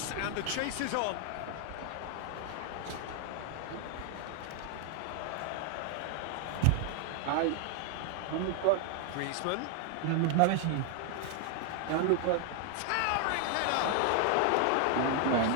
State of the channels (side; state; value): both; different; correlation 0.00